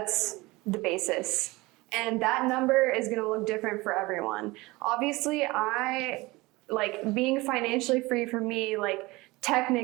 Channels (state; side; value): quieter; left; 22.0 dB